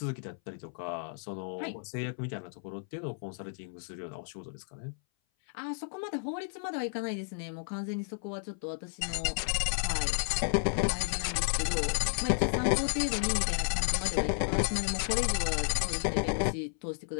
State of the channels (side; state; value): right; silent; 56 dB below the other